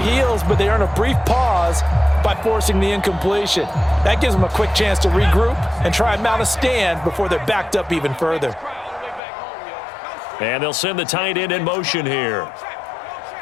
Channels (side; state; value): right; drops out; at 9.2 s